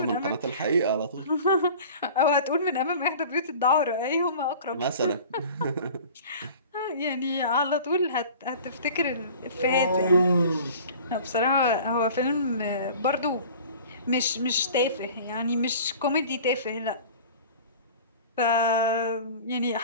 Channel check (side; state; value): both; inverted; correlation -0.43